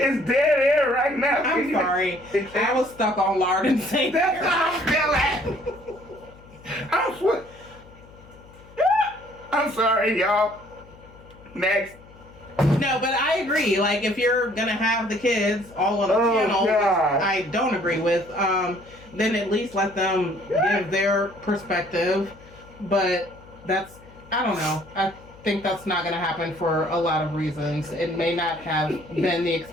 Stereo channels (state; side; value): noise; left; hum, 23 dB below the sound